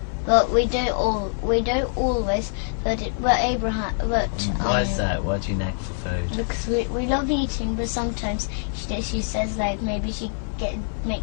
but we don't always. But Abraham. But Why is that? Why do you nag for food? because we love eating, but sometimes she says like maybe she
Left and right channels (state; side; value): silent; right; 56 dB below the other